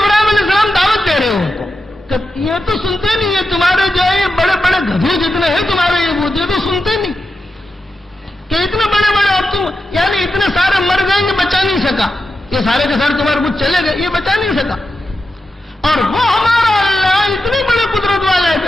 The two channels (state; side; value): normal; both; correlation 0.89